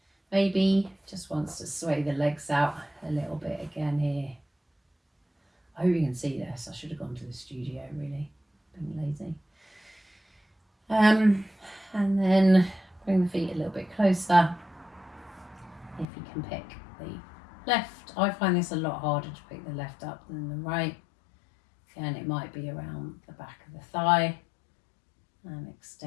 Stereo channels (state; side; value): drops out; right; at 16.1 s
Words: Maybe just wants to sway the legs out a little bit again here. I hope you can see this. I should have gone to the studio, really. Being lazy. And then bring the feet a little bit closer. If you can pick the left. I find this a lot harder to pick the left up than the right. Again, it might be around the back of the thigh. And